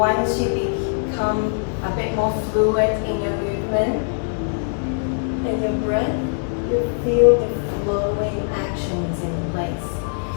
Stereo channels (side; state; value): right; silent; digital silence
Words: you become a bit more fluid in your movement and your breath, you feel the flowing actions in place.